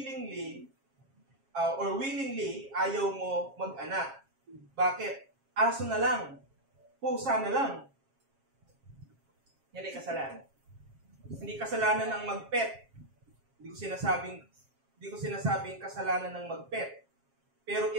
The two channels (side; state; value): left; late; 7.4 ms